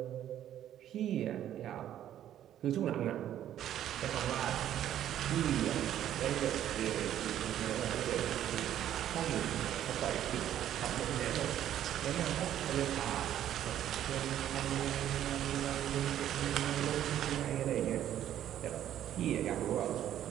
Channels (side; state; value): left; quieter; 11.3 dB